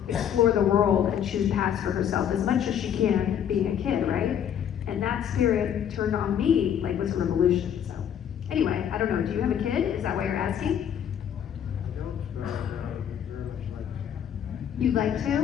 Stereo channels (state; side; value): quieter; right; 9.2 dB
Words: explore the world and choose paths for herself as much as she can being a kid, right? And that spirit turned on me like was a revolution. So anyway, I don't know, do you have a kid? Is that why you're asking? I don't, very much like it. You'd like